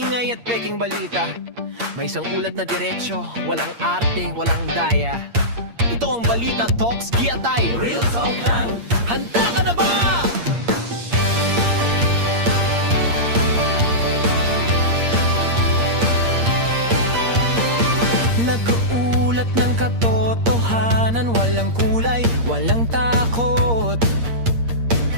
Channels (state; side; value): late; left; 8.6 ms